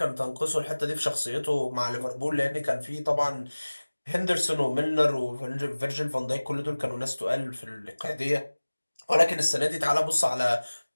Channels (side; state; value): both; inverted; correlation -1.00